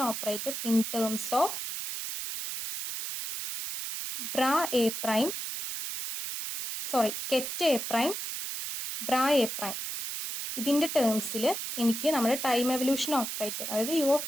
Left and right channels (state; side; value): noise; right; hiss, 5 dB below the sound